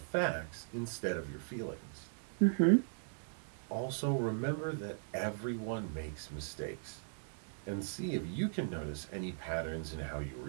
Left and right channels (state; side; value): silent; left; digital silence